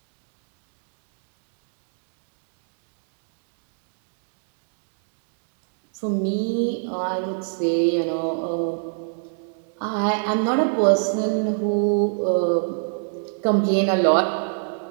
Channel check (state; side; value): silent; left; digital silence